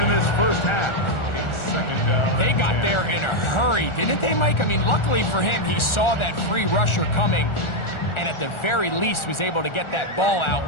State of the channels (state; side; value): late; right; 1.4 ms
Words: this first half. They got there in a hurry, didn't they, Mike? I mean, luckily for him, he saw that free rusher coming and at the very least was able to get that ball out